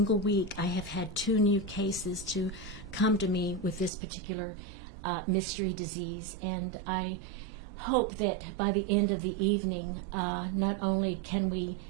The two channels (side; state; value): left; drops out; at 3.9 s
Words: week I have had 2 new cases to come to me with this particular mystery disease, and I hope that by the end of the evening, not only can we